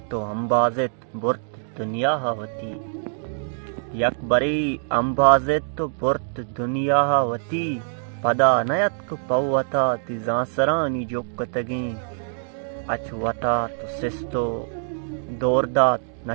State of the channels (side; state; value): left; silent; digital silence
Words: तो अंबाजित बुर्त दुनिया होती, यक बरे अंबाजित तो बुर्त दुनिया होती, पदा नयत को पवता तिजांसरानी जोकतगें, अचवता तो सिस्तो दोरदात